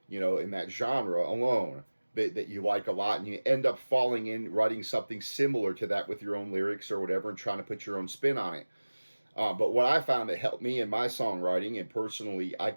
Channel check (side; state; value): both; inverted; correlation -1.00